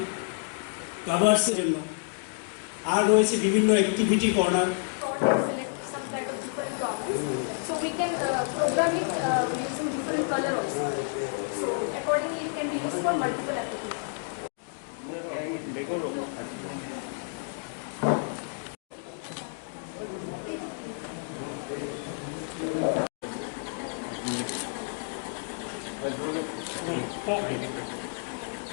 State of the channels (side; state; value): right; silent; 58 dB below the other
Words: কভার্সের জন্য। আর রয়েছে বিভিন্ন activity corner. So we can program it using different color also. So accordingly it can be used for multiple applications.